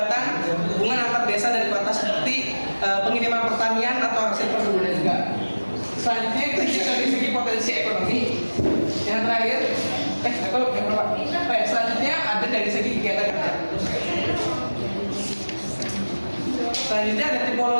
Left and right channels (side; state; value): both; inverted; correlation -1.00